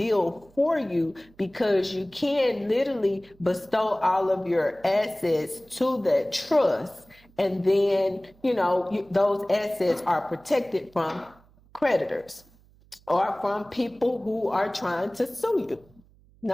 for you because you can literally bestow all of your assets to that trust. And then, those assets are protected from creditors or from people who are trying to sue you.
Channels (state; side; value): noise; right; hum, 29 dB below the sound